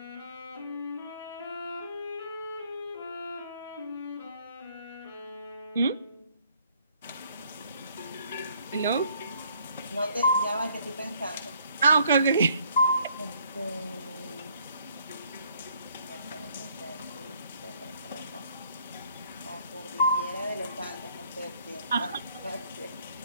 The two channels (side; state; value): both; inverted; correlation -0.65